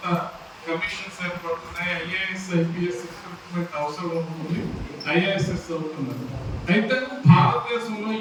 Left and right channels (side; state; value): both; identical; correlation 1.00